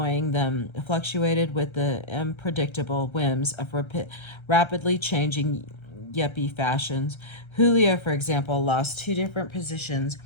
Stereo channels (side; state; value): right; late; 1.3 ms